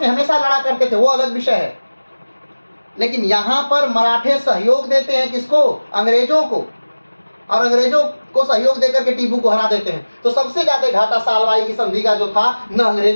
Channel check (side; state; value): both; inverted; correlation -1.00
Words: हमेशा लड़ा करते थे, वो अलग विषय है, लेकिन यहां पर मराठे सहयोग देते हैं किसको? अंग्रेजों को, और अंग्रेजों को सहयोग देकर के टीपू को हरा देते हैं। तो सबसे ज्यादा घाटा सालबाई की संधि का जो था, न